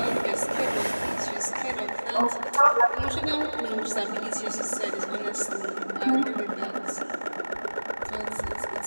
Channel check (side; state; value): both; inverted; correlation -1.00